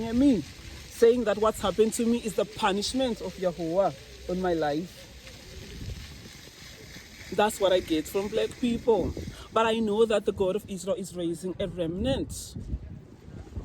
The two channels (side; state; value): both; identical; correlation 1.00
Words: at me, saying that what's happened to me is the punishment of Yahweh on my life. That's what I get from black people. But I know that the God of Israel is raising a remnant